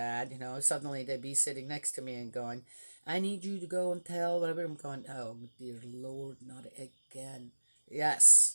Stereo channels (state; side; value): inverted; both; correlation -1.00